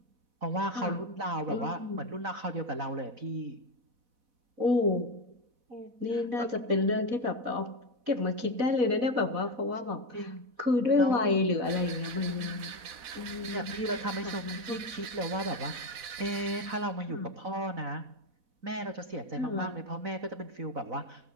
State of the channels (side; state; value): left; late; 4.1 ms